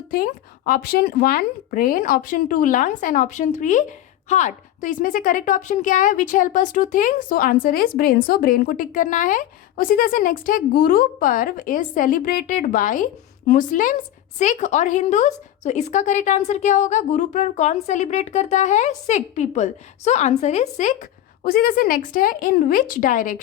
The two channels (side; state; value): right; quieter; 12.4 dB